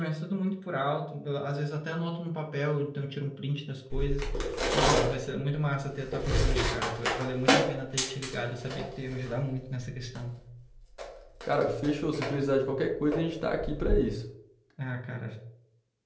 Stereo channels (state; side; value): identical; both; correlation 1.00